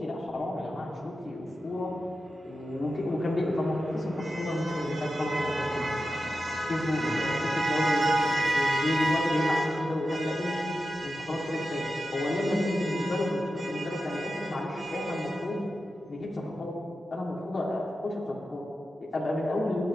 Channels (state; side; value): normal; both; correlation 0.91